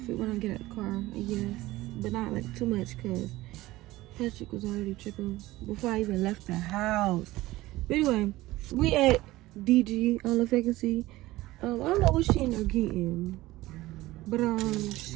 when I get out the car, I guess, but not like too much because Patrick was already tripping before I even left the house. But anyway, we at DG. I don't know if I can see. I don't know what she ended up getting, but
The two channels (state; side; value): quieter; left; 17.9 dB